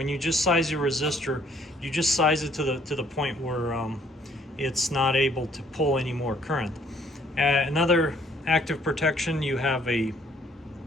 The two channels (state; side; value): normal; both; correlation 0.63